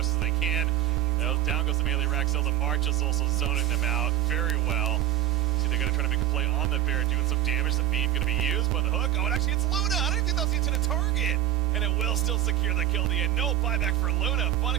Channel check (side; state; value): left; quieter; 12.6 dB